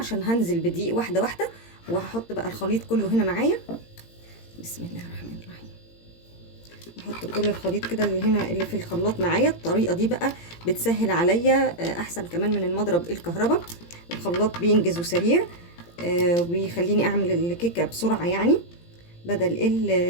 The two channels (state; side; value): late; right; 17 ms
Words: هنزل بدقيق واحده واحده، وهحط بقى الخليط كله هنا معايا. بسم الله الرحمن الرحيم. احط كل الخليط كده اللي هنا اللي في الخلاط معايا. الطريقه دي بقى بتسهل عليا احسن كمان من المضرب الكهرباء. الخلاط بينجز وسريع وبيخليني اعمل الكيكه بسرعه يعني، بدل